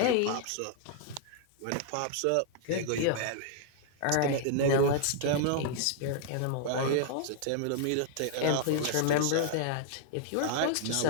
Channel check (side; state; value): both; different; correlation 0.00